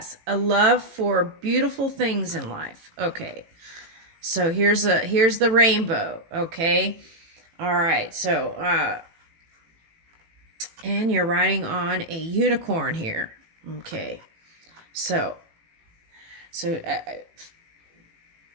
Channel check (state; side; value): late; left; 18 ms